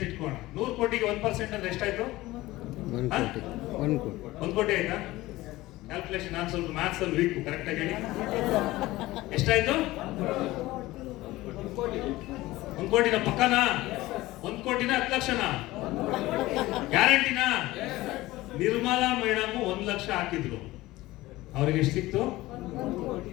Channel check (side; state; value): right; quieter; 18.2 dB